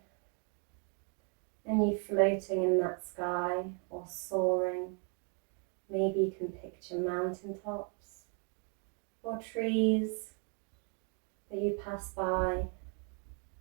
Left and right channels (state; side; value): quieter; left; 39.5 dB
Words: and you floating in that sky or soaring. Maybe you can picture mountaintops or trees that you pass by.